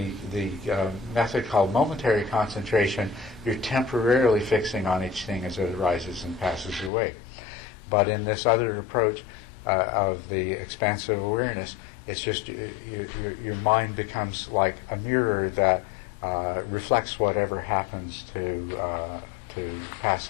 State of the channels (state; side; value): drops out; right; at 6.9 s